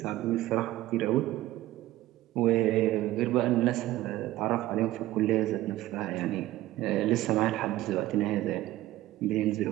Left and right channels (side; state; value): left; quieter; 15.8 dB